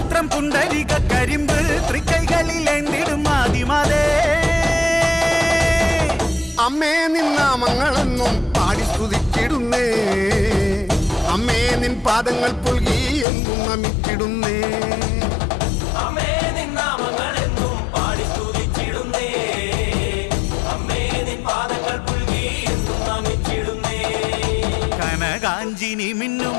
പുണ്ടരിക കരിമ്പ് തൃക്കൈകളിലേന്തിടും ആദിമാതേ. അമ്മേ നിന്നാമങ്ങളെന്നും പാടി സ്തുതിച്ചിടുന്നേ, അമ്മേ നിൻ പാദങ്ങൾ പുൽകി എന്നും നമിച്ചിടുന്നേ. അമ്മേ നിന്നാമങ്ങളെന്നും പാടി സ്തുതിച്ചിടുന്നേ, അമ്മേ നിൻ പാദങ്ങൾ പുൽകി എന്നും നമിച്ചിടുന്നേ. കനകാഞ്ചിനി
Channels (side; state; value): right; drops out; at 13.2 s